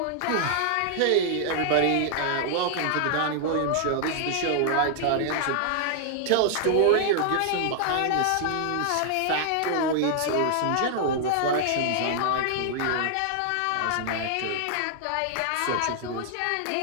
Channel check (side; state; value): both; different; correlation -0.01